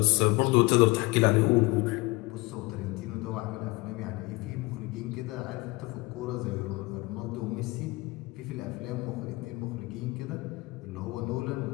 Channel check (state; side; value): quieter; right; 23.6 dB